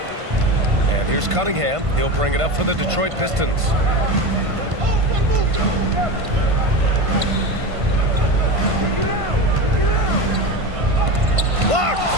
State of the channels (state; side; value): late; left; 1.5 ms